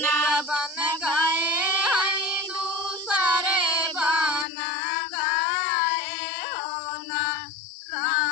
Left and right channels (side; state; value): right; drops out; at 4.5 s